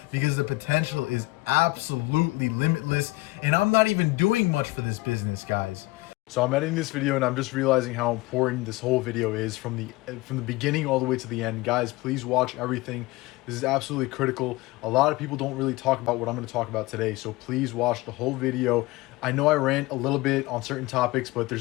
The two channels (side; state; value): right; quieter; 20.8 dB